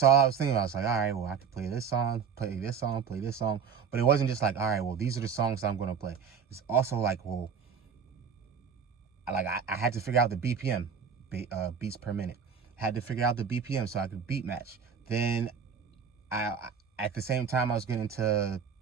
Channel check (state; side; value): quieter; left; 6.7 dB